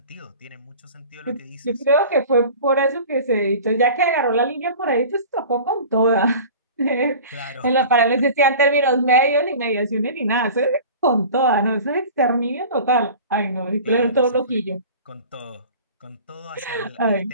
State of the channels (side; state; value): both; inverted; correlation -0.40